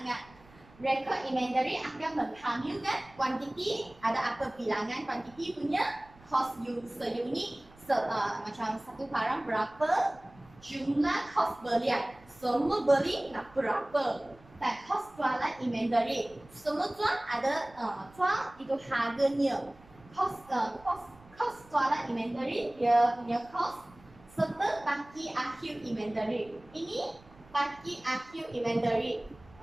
Rekod inventory akan menghamilkan kuantiti, ada apa bilangan kuantiti punya, cost seunit, macam satu barang berapa, jumlah kos belian, semua beli nak berapa, dan kos jualan inventory, semua jual ada jual itu harganya, kos jualan inventory dia punya kos, serta baki akhir inventory. Ini baki akhir inventory.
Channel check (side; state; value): right; noise; rumble, 25 dB below the sound